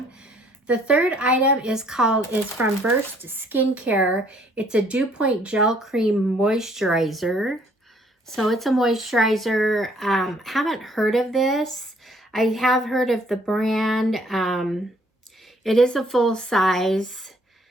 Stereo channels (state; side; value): normal; both; correlation 0.62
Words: The third item is from Burst Skincare. It's a Dew Point Gel Cream Moisturizer. So it's a moisturizer. Haven't heard of this. I have heard of the brand. It is a full size.